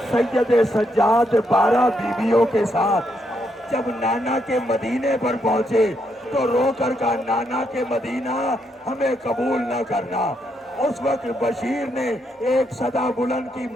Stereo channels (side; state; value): both; normal; correlation 0.78